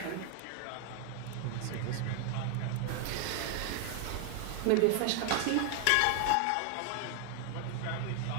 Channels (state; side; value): different; both; correlation 0.00